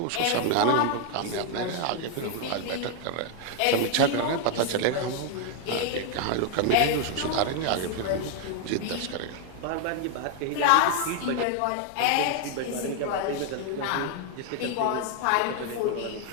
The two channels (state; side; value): different; both; correlation 0.00